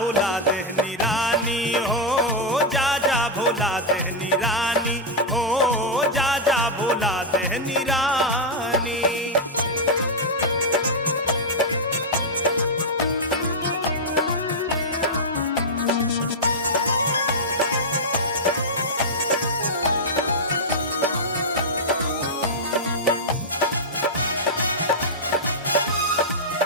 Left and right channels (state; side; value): normal; both; correlation -0.05